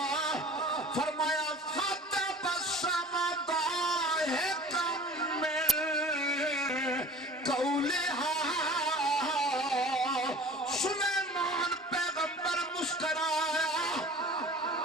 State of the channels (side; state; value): both; normal; correlation 0.43